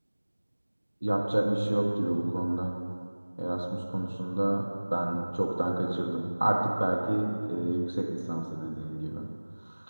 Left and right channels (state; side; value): inverted; both; correlation -1.00